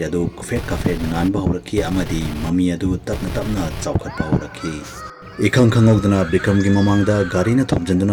ꯑꯗꯨ ꯀꯨꯐꯦꯠ ꯀꯥꯐꯦꯠ ꯉꯥꯟꯕ ꯍꯧꯔꯛꯈꯤ ꯑꯃꯗꯤ ꯃꯃꯤ ꯑꯗꯨ ꯇꯞꯅ ꯆꯥꯎꯈꯠꯄ ꯍꯧꯔꯛꯈꯤ꯫ ꯏꯈꯪ ꯈꯪꯍꯧꯗꯅ ꯕꯤꯀ꯭ꯔꯝꯒꯤ ꯃꯃꯥꯡꯗ ꯒꯥꯔꯤꯅ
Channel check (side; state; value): both; identical; correlation 1.00